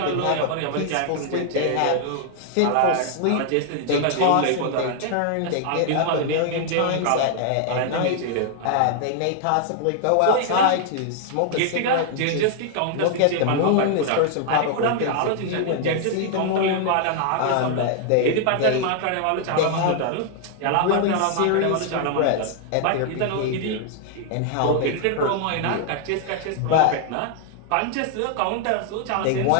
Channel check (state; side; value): different; both; correlation 0.00